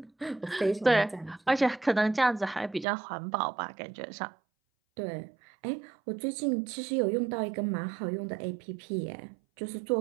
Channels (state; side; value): drops out; left; at 2.9 s